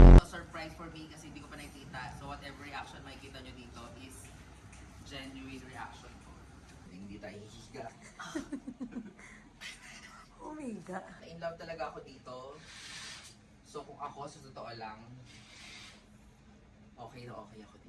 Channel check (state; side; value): identical; both; correlation 1.00